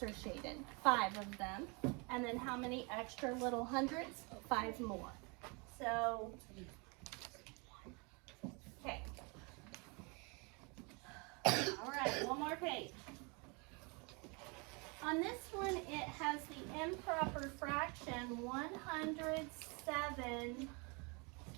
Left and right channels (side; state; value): left; quieter; 31.3 dB